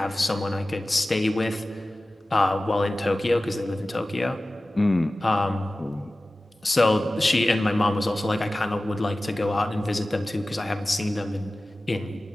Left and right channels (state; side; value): normal; both; correlation 0.96